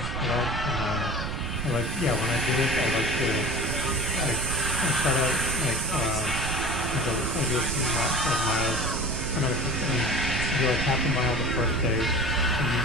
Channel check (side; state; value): right; noise; rumble, 4 dB below the sound